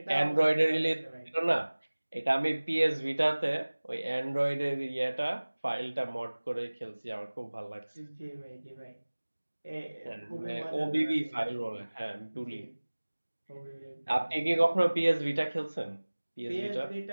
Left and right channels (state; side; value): inverted; both; correlation -1.00